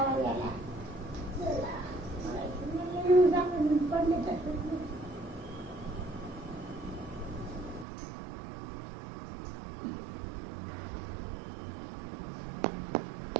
आला पडले तसं.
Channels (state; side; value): drops out; left; at 7.9 s